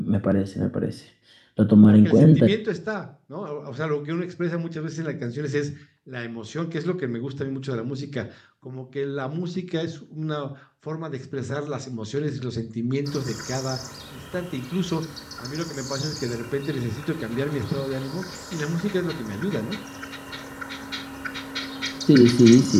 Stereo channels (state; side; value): identical; both; correlation 1.00